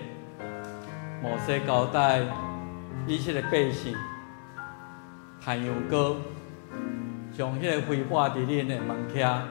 摩西交代以色列百姓弹羊羔，将迄个灰抹伫恁的门屉、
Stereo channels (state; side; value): silent; right; 58 dB below the other